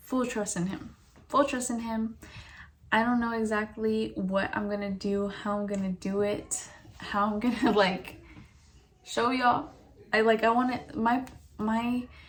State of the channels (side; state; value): both; identical; correlation 1.00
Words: full trust in him. Full trust in him. I don't know exactly what I'm gonna do, how I'm gonna do it, how I'm gonna like show y'all. I want it,